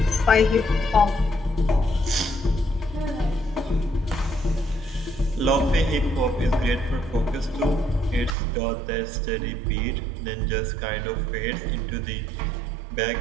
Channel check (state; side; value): drops out; left; at 8.3 s